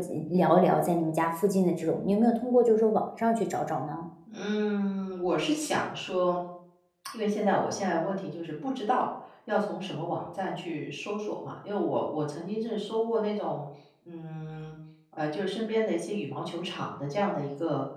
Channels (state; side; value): identical; both; correlation 1.00